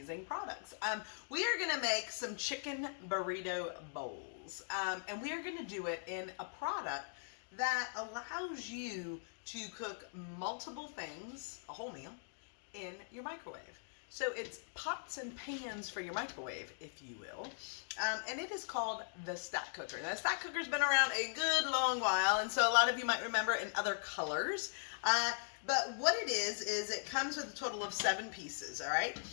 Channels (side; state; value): right; silent; digital silence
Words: products. We are going to make some chicken burrito bowls, and we are going to do it in a product that allows you to cook multiple things, a whole meal, in your microwave. So it's pots and pans for your microwave, if you will, and it is called the Stack Cooker. Now, the Stack Cooker's been around a good long while, and so a lot of you might remember it in other colors. But what it is it comes with a total of 7 pieces, all right?